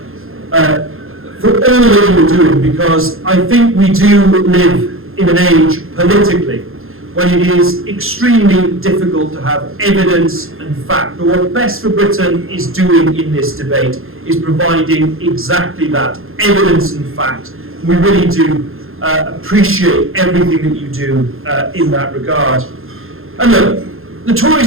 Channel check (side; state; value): left; late; 0.61 ms